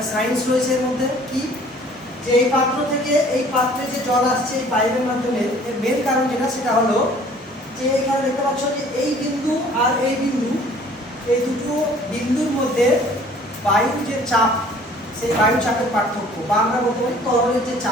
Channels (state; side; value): normal; both; correlation 0.53